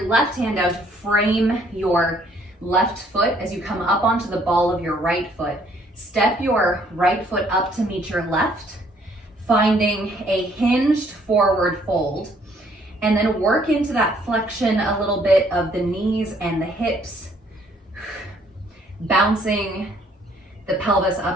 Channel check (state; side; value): normal; both; correlation 0.64